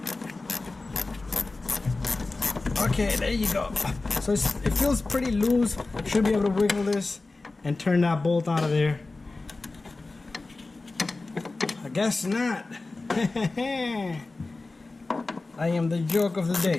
Okay, there you go. So it feels pretty loose. Should be able to wiggle this and turn that bolt out of there. I guess not. I am the joke of the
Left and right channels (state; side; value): quieter; right; 3.4 dB